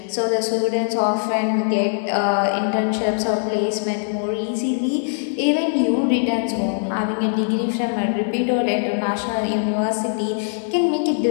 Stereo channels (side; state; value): right; silent; digital silence